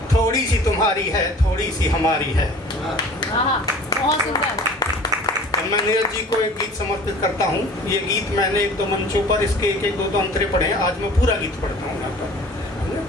थोड़ी सी तुम्हारी है थोड़ी सी हमारी है। बहुत सुंदर। मैं नीरज जी को एक गीत समर्पित करता हूँ। ये गीत मैंने एक दो मंचों पर इसके एक एक दो अंतरे पढ़े हैं, आज मैं पूरा गीत पढ़ता हूँ यहाँ पर।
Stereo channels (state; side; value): normal; both; correlation 0.46